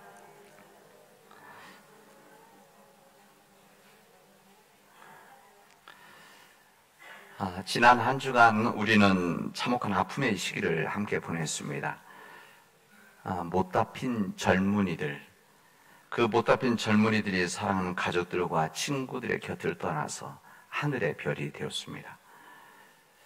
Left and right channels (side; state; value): both; identical; correlation 1.00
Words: 지난 한 주간 우리는 참혹한 아픔의 시기를 함께 보냈습니다. 못다 핀 젊은이들, 그 못다 핀 젊은이들이 사랑하는 가족들과 친구들의 곁을 떠나서 하늘의 별이 되었습니다.